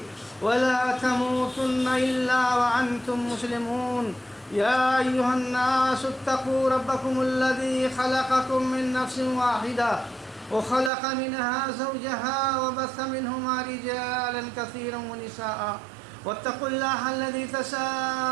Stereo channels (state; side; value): drops out; left; at 10.9 s